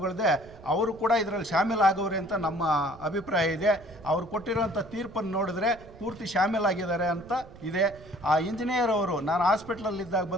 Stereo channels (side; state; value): right; noise; rumble, 20 dB below the sound